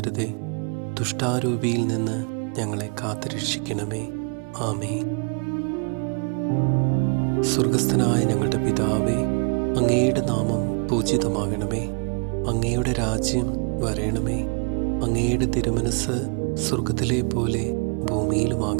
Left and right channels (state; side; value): quieter; left; 36.4 dB